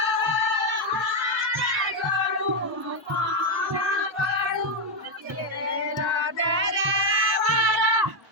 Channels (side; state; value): both; normal; correlation 0.04